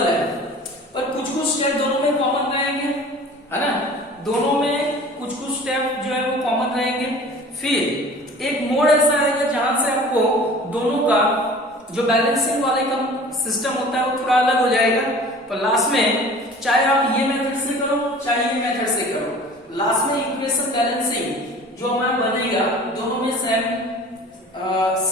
है, पर कुछ कुछ स्टेप दोनों में कॉमन रहेंगे, है ना। दोनों में कुछ कुछ स्टेप जो है वो कॉमन रहेंगे। फिर एक मोड ऐसा आएगा जहां से आपको दोनों का जो बैलेंसिंग वाले का सिस्टम होता है वो थोड़ा अलग हो जाएगा। पर लास्ट में चाहे आप ये मेथड से करो चाहे ये मेथड से करो, लास्ट में इक्वेशन बैलेंसिंग जो हमारा बनेगा दोनों में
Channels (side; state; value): both; normal; correlation 0.44